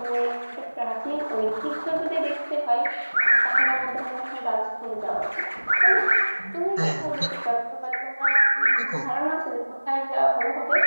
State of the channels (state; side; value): inverted; both; correlation -1.00